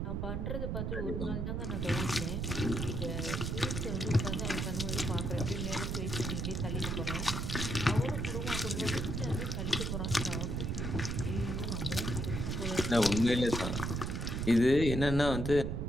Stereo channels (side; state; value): right; noise; rumble, 1 dB below the sound